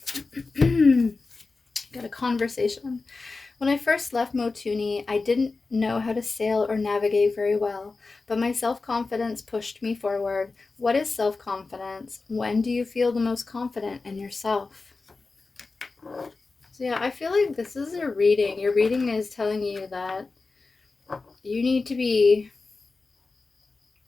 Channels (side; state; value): right; quieter; 3.9 dB